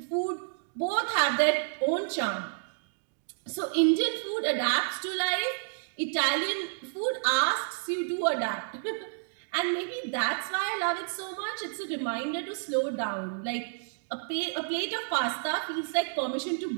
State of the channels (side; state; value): left; silent; digital silence